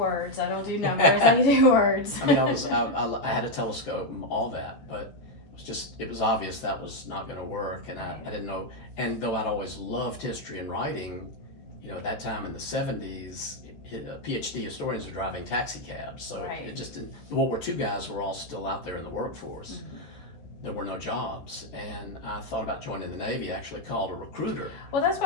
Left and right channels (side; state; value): right; late; 14 ms